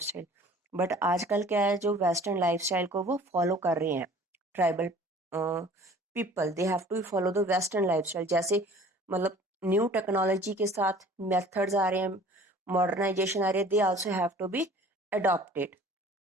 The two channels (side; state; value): both; normal; correlation 0.49